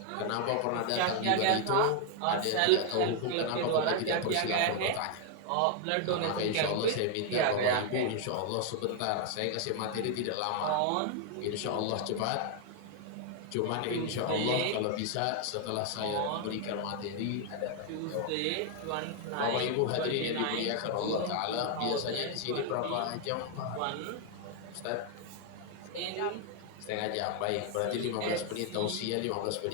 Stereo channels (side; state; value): both; different; correlation 0.00